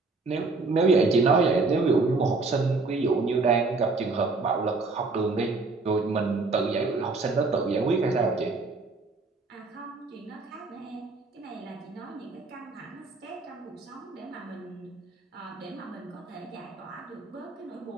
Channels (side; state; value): left; quieter; 3.7 dB